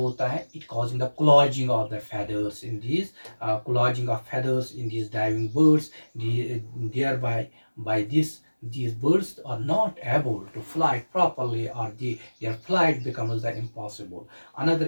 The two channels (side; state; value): both; inverted; correlation -1.00